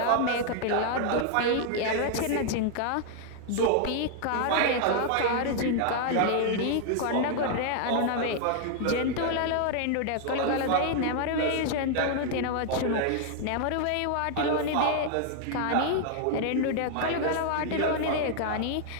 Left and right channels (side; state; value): both; different; correlation 0.00